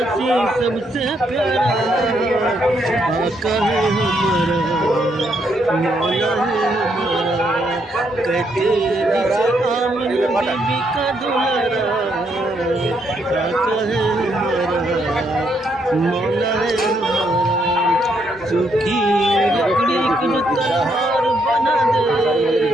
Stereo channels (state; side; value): normal; both; correlation 0.75